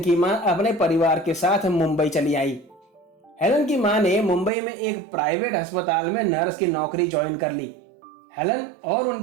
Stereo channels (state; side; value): drops out; left; at 4.5 s